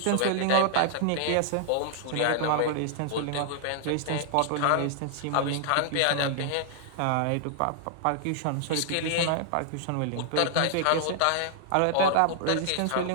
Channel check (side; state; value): both; different; correlation -0.01